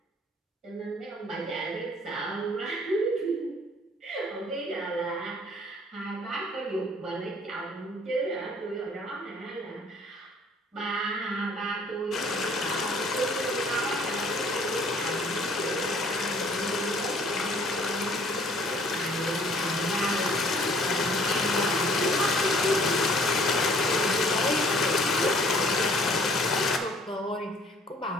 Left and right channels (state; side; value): normal; both; correlation 0.57